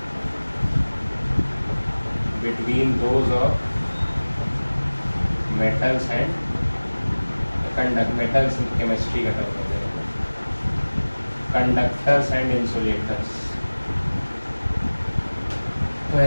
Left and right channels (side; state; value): both; inverted; correlation -1.00